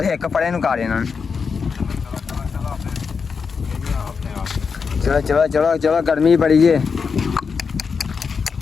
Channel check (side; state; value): right; quieter; 5.6 dB